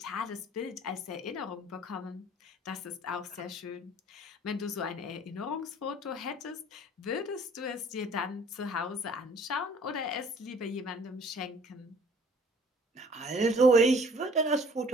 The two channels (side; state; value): both; normal; correlation 0.52